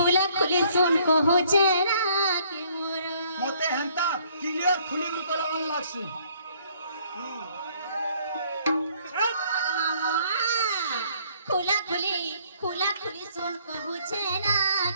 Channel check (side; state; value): both; inverted; correlation -0.62